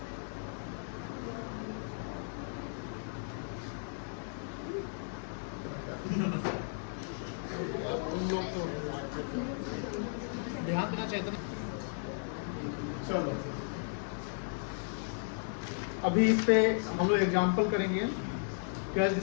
ध्यान देना चाहिए था। चलो अभी इस पे हम लोग एग्जाम्पल करेंगे, कैश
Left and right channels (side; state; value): right; silent; digital silence